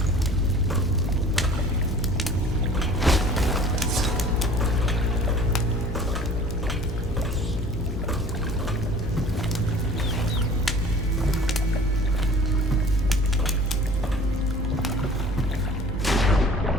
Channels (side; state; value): both; normal; correlation 0.47